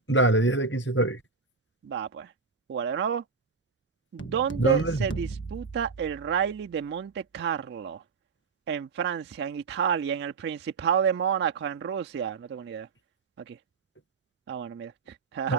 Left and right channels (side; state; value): left; quieter; 4.8 dB